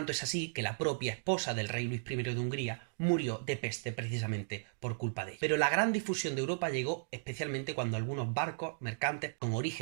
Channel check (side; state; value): left; silent; digital silence